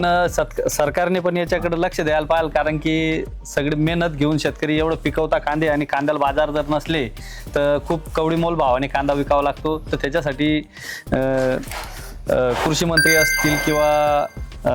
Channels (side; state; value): both; identical; correlation 1.00